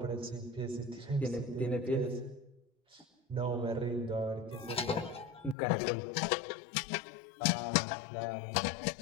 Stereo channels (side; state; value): right; drops out; at 5.6 s